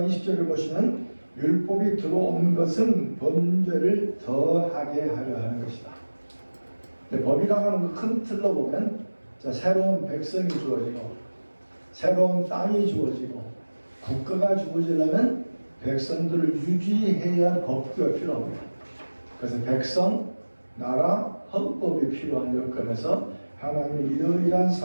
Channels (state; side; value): inverted; both; correlation -1.00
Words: 20절을 보시면 율법이 들어온 것은 범죄를 더하게 하려 하는 것이다. 법이라고 하는 큰 틀로 보면 새로운 백성이 주어지고 새로운 땅이 주어지고 국가가 주어지려면 백성들을 유지해야 할 법규가 필요합니다. 그래서 백성, 나라, 헌법이 필요한 여건에서 하나님이 이러이러한